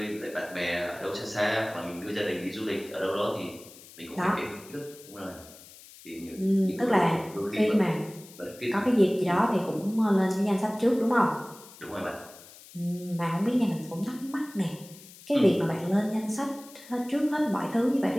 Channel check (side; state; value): left; noise; hiss, 20 dB below the sound